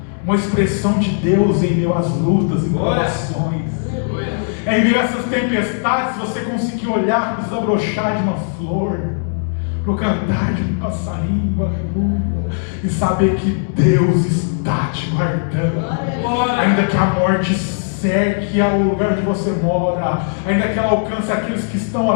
uma expressão de Deus em meio às lutas e provações. Em meio a essas tempestades, você conseguir olhar e desabrochar de uma flor, para o cantar de um passarinho, aleluia, e saber que Deus está te guardando. Ainda que a morte cerque ao lugar onde você mora, ainda que ela alcance aqueles que estão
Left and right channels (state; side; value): silent; right; digital silence